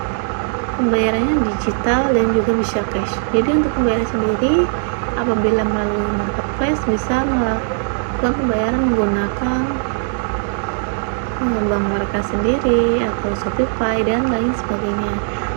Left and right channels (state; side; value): silent; left; digital silence